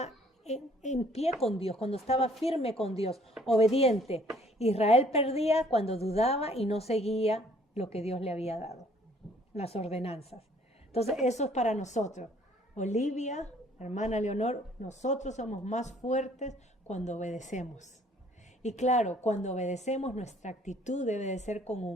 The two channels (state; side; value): normal; both; correlation 0.59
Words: en pie con Dios, cuando estaba firme con Dios, obediente. Israel perdía cuando dudaba y no seguía lo que Dios le había dado, las ordenanzas. Entonces eso es para nosotros. Olivia, hermana Leonor, nosotros somos más fuertes cuando obedecemos. Y claro, cuando obedecemos, nuestra actitud debe de ser con